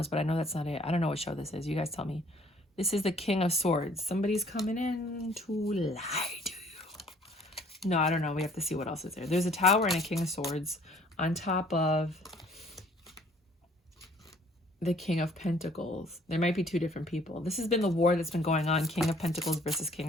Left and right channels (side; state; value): both; normal; correlation 0.58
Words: but I know that's not it. I don't know what show this is. You guys tell me. This is the King of Swords. Somebody's coming in to lie to you. No, I don't know. We have to see what else is there. There's a Tower and a King of Swords on top of the King of Pentacles. There might be two different people. This has been the war that's been going on. King of Pentacles versus King